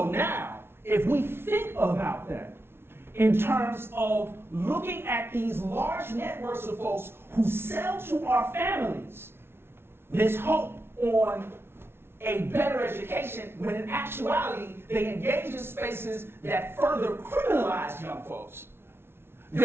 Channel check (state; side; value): late; left; 0.12 ms